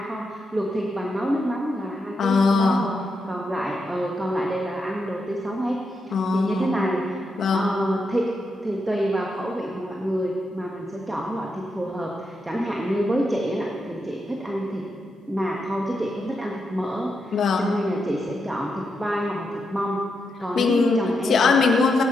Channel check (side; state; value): both; normal; correlation 0.84